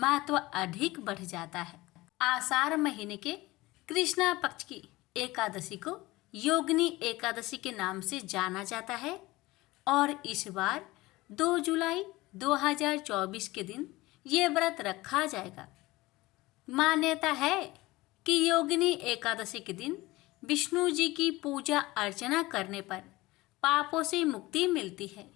अधिक बढ़ जाता है। आषाढ़ महीने के कृष्णा पक्ष की एकादशी को योगिनी एकादशी के नाम से जाना जाता है और इस बार 2 जुलाई 2024 के दिन ये व्रत रखा जाएगा। मान्यता है कि योगिनी एकादशी के दिन विष्णु जी की पूजा अर्चना करने पर पापों से मुक्ति मिलती है।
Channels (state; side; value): quieter; right; 19.9 dB